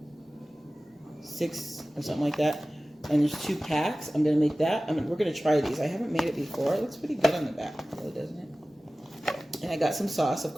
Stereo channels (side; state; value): both; normal; correlation 0.97